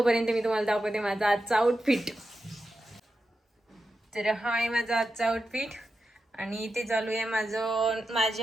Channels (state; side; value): normal; both; correlation 0.89